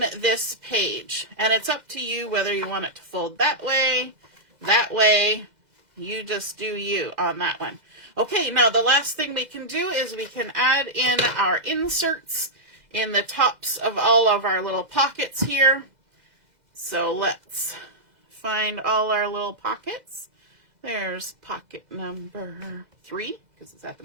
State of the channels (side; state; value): left; late; 2.0 ms